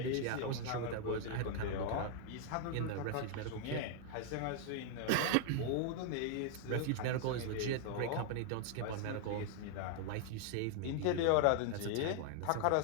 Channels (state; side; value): different; both; correlation 0.00